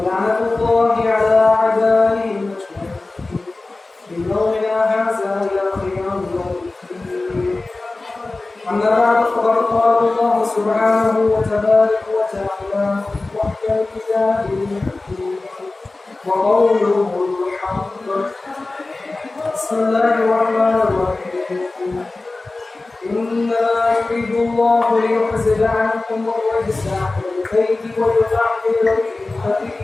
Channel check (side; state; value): right; quieter; 3.2 dB